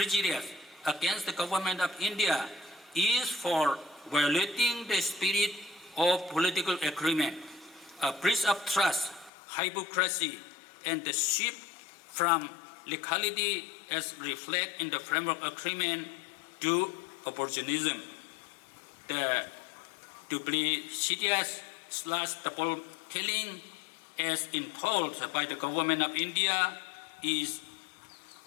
against the government of India is for violating the spirit of political agreement, a breach of trust, hypocrisy, and the shift from legality as reflected in the framework agreement to opportunism. The duplicitous double telling as imposed by the government of India is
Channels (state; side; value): drops out; right; at 9.3 s